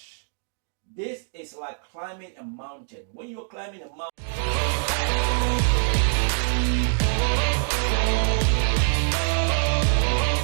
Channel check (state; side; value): silent; left; digital silence